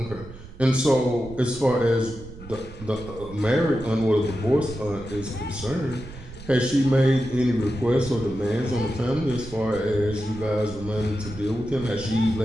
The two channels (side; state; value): right; noise; rumble, 15 dB below the sound